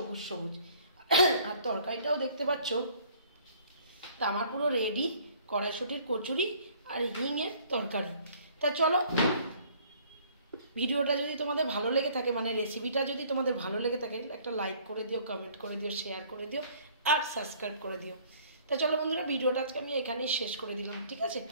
সবুজ। আর তরকারিটাও দেখতে পাচ্ছ। তা আমার পুরো রেডি কড়াইশুঁটির কচুরি আর হিঙের তরকারি। তা চলো, ভিডিওটা যদি তোমাদের ভালো লেগে থাকে, মানে রেসিপিটা যদি তোমাদের ভালো লেগে থাকে, একটা লাইক করে দিও, কমেন্ট করে দিও, শেয়ার করে দিও, আর সাবস্ক্রাইব করে দিও। তা চলো বন্ধুরা, ভিডিওটা আজকে আমি এখানেই শেষ করে দিলাম, ঠিক আছে?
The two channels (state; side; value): inverted; both; correlation -0.56